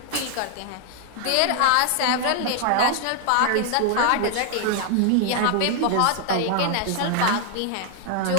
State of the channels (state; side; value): different; both; correlation 0.00